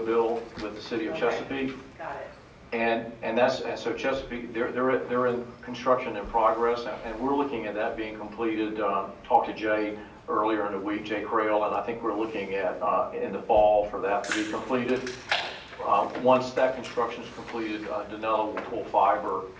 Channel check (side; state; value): both; identical; correlation 1.00